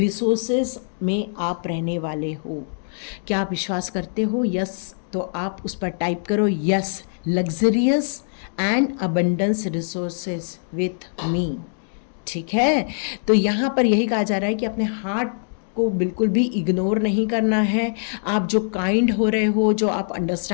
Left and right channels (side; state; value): right; silent; digital silence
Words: में आप रहने वाले हो। क्या आप विश्वास करते हो? यस, तो आप उस पर टाइप करो, yes, luxurious and abundance resources with me. ठीक है, तो यहाँ पर यही कहा जा रहा है कि अपने हार्ट को बिल्कुल भी इग्नोर नहीं करना है। आप जो काइंड हो रहे हो, जो आप